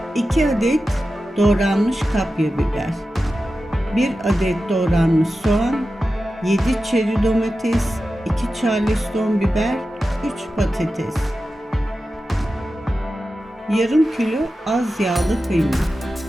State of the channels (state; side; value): normal; both; correlation 0.93